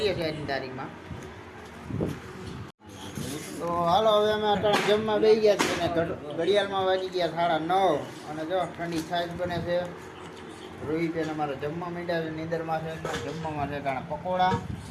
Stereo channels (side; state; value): both; identical; correlation 1.00